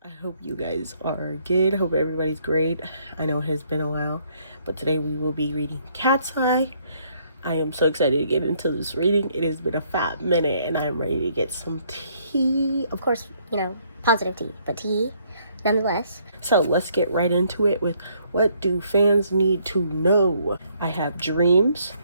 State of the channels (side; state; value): both; inverted; correlation -0.68